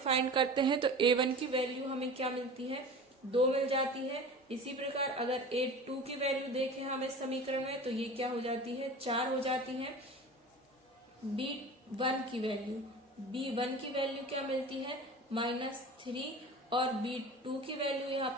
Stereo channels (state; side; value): normal; both; correlation 0.36